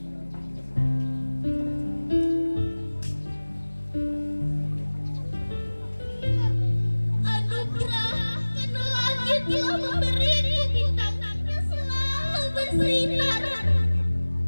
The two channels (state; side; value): inverted; both; correlation -1.00